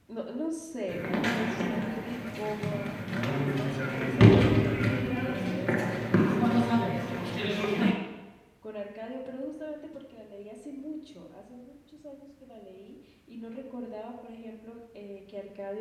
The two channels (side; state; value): both; identical; correlation 1.00